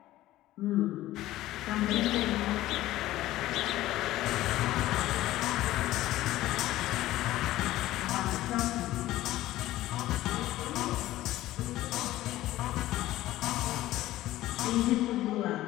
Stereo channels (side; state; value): right; quieter; 15.5 dB